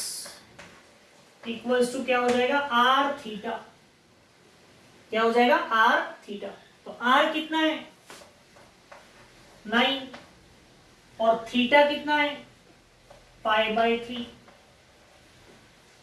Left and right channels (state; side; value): identical; both; correlation 1.00